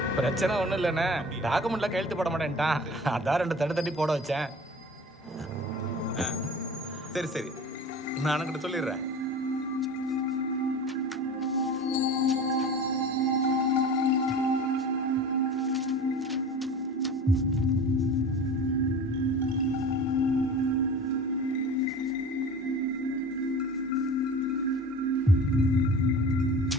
பிரச்சனை ஒன்றும் இல்லைண்ணே. டாக்குமெண்ட்லாம் கையெழுத்து போட மாட்டேன்ட்டான். அதான் 2 தட்டி போட வச்சேன். சரி சரி, நான் அண்ணன்கிட்ட சொல்லிடுறேன்.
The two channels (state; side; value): normal; both; correlation 0.38